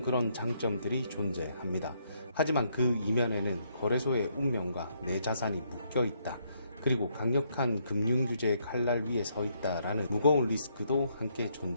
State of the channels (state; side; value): inverted; both; correlation -0.73